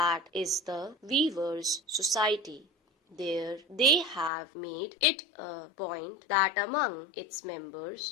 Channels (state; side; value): drops out; right; at 4.3 s